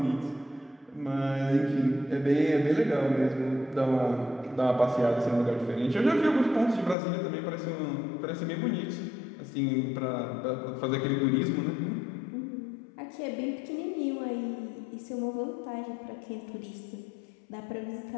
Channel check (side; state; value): right; drops out; at 7.0 s